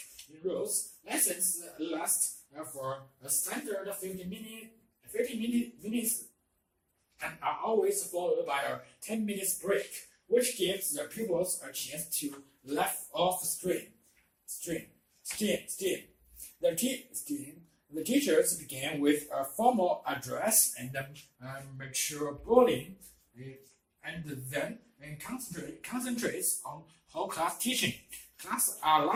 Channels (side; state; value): both; identical; correlation 1.00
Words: in rows. Lessons last for a standard 50 minutes and are always followed by a 10 minutes break, which gives the pupils a chance to let off steam. The teachers begin with a formal address and mature bullying, and then concentrates on whole class teaching. Classes are